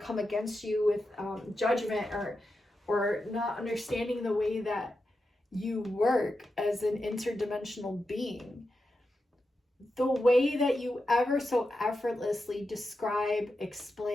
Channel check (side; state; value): both; normal; correlation 0.89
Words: come against you with judgment or not understanding the way that you work as an interdimensional being, the way that you ever so effortlessly describe,